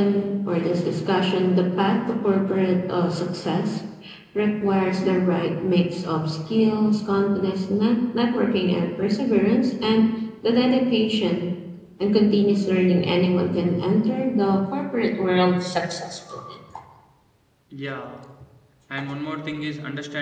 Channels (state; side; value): identical; both; correlation 1.00